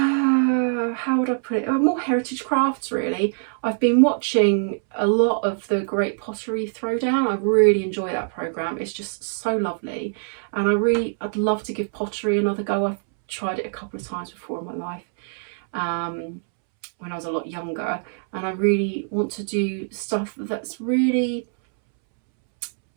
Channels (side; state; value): left; silent; 63 dB below the other